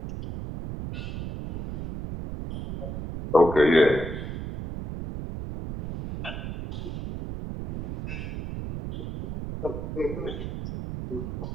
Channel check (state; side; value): noise; right; rumble, 6 dB below the sound